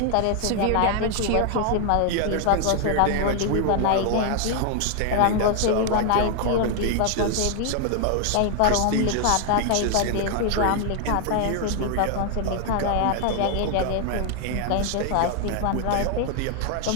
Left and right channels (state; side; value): different; both; correlation 0.00